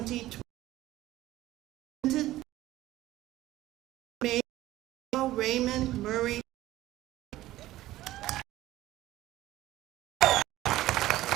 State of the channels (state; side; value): quieter; left; 15.6 dB